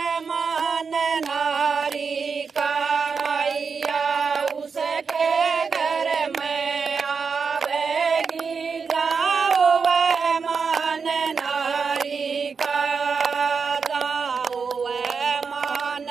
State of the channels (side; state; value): left; quieter; 5.5 dB